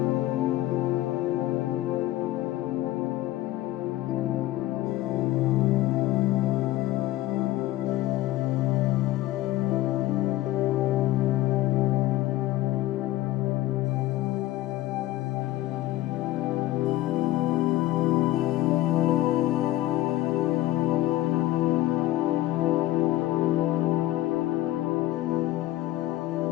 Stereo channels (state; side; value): quieter; right; 15.9 dB